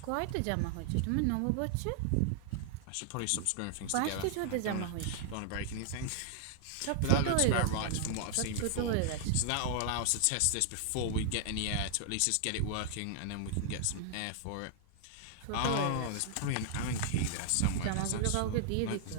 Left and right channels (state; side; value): different; both; correlation -0.01